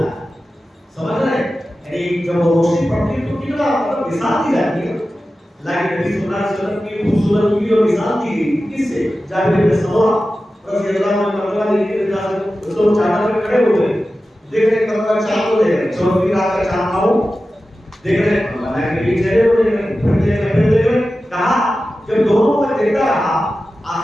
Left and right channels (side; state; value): both; normal; correlation 0.94